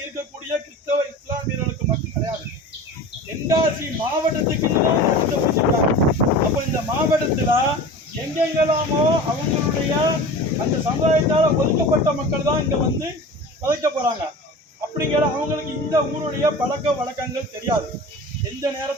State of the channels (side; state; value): both; normal; correlation 0.36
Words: இருக்கக்கூடிய கிறிஸ்தவ இஸ்லாமியர்களுக்கு மட்டும் கிடையாது, தென்காசி மாவட்டத்துக்கு வச்சிருக்காங்க. அப்ப இந்த மாவட்டத்துல எங்கெங்கெல்லாமோ அவங்களுடைய அந்த சமுதாயத்தால ஒதுக்கப்பட்ட மக்கள் தான் இங்க வந்து வதைக்க போறாங்க. அப்படிங்கிற அவங்களுக்கு இந்த ஊருடைய பழக்க வழக்கங்கள் தெரியாது. எந்த